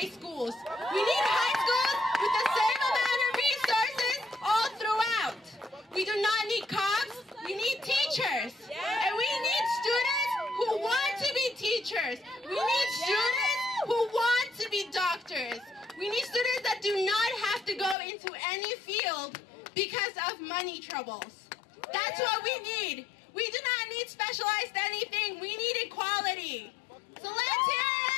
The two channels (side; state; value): right; drops out; at 17.9 s